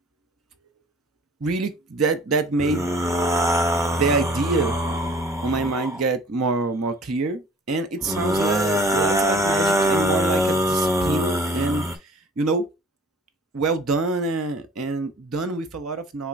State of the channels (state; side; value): normal; both; correlation 0.50